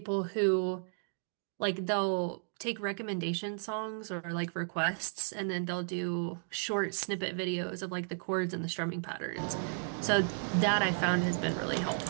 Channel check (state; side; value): silent; left; digital silence